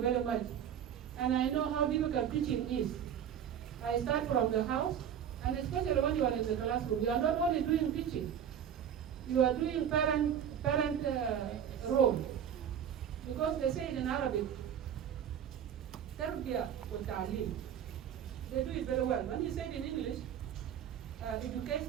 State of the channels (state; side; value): quieter; left; 9.0 dB